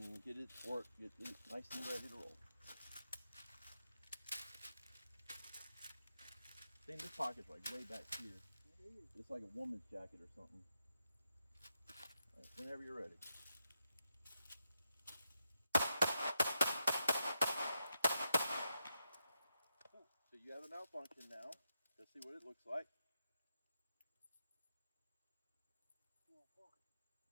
get it nice and ready to roll. I think this pocket's like way back here. It's like a woman's jacket or something. All right, whenever you're ready. So you have a malfunction now. Let's see what it looks like.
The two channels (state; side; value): inverted; both; correlation -0.86